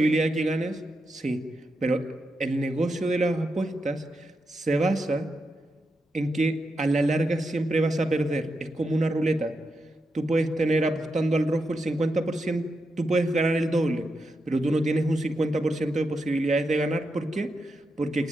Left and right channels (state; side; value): normal; both; correlation 0.86